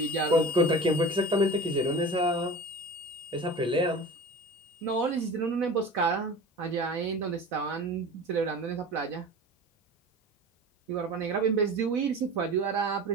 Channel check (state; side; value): normal; both; correlation 0.36